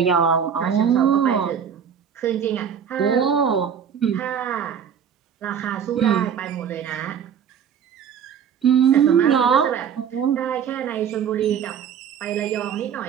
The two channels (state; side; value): quieter; left; 7.9 dB